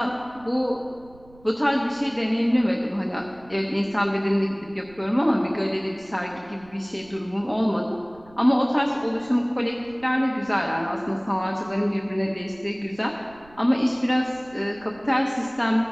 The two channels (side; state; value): right; noise; rumble, 25 dB below the sound